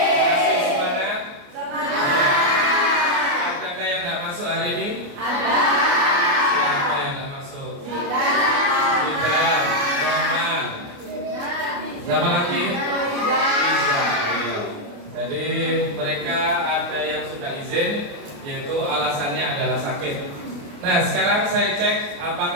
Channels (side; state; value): left; late; 29 ms